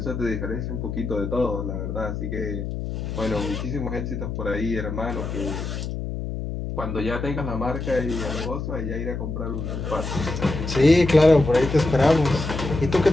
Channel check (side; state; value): left; noise; hum, 5 dB below the sound